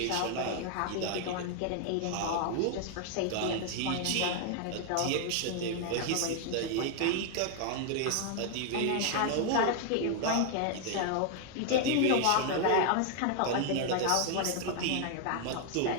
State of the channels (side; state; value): both; different; correlation 0.00